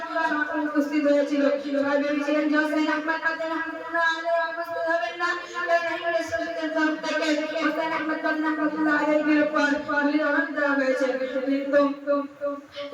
উপস্থিত হয়েছিল। সবাই ভেবেছিলেন যে সৈয়দ আহমদ মাদানী রাহমাতুল্লাহ আলাইহি উপস্থিত হবেন না, কারণ ইংরেজ শাসকের তরফ থেকে সৈয়দ আহমদ মাদানী রাহমাতুল্লাহ আলাইহির উপর গুলির অর্ডার দেওয়া হয়েছে। কিন্তু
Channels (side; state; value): both; identical; correlation 1.00